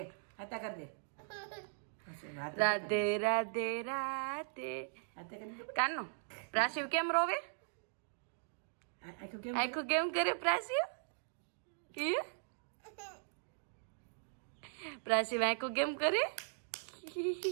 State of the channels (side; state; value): left; silent; digital silence